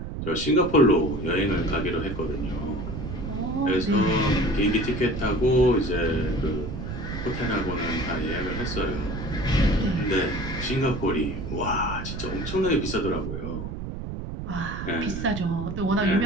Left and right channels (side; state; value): right; noise; rumble, 6 dB below the sound